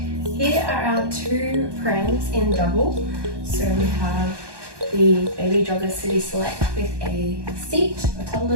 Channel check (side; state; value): left; late; 1.2 ms